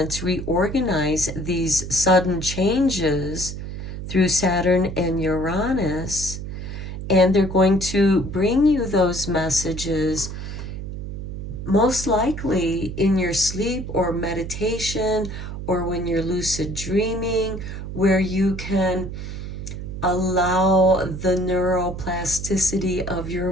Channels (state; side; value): noise; right; hum, 7 dB below the sound